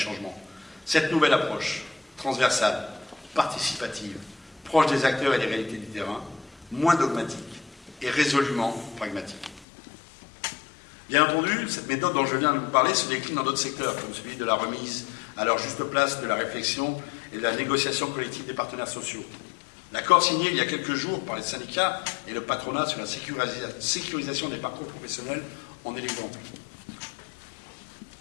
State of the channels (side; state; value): right; drops out; at 9.7 s